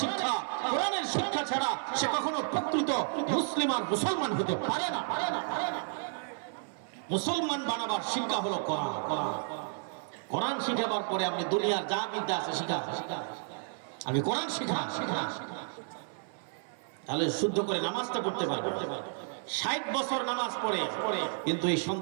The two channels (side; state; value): left; silent; 56 dB below the other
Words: শিক্ষা। কোরআনের শিক্ষা ছাড়া সে কখনো প্রকৃত মুসলিম আর মুসলমান হতে পারে না। মুসলমান বানাবার শিক্ষা হলো কোরআন। কোরআন শিখাবার পরে আপনি দুনিয়ার যা বিদ্যা আছে শিখা, আমি কোরআন শিখা, তাহলে শুদ্ধ করে নামাজটা পড়তে পারবে। 60 বছর নামাজ পড়ে কিন্তু এই